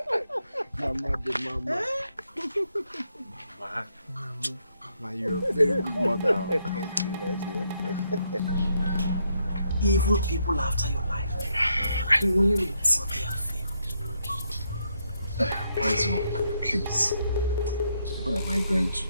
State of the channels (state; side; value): inverted; both; correlation -0.77